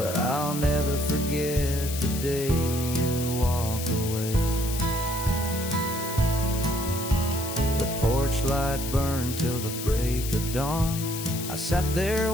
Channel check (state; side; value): noise; left; hiss, 8 dB below the sound